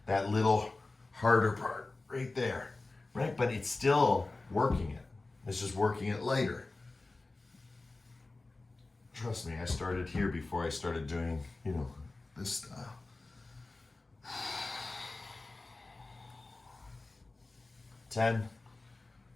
that little harder part right there, right? But it's still working it. It's just working it later. Trust me, I started here before I started doing, this style. 10,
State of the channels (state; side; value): quieter; right; 3.3 dB